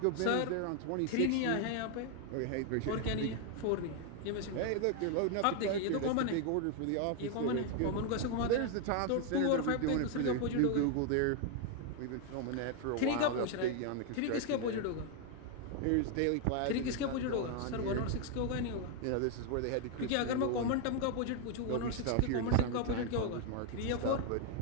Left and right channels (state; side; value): different; both; correlation 0.01